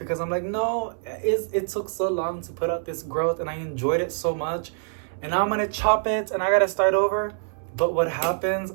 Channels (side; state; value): left; silent; 62 dB below the other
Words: I'm like, no, it took so long to put out this growth and I enjoyed it so much, and now I'm gonna chop it and I gotta start over. But what happens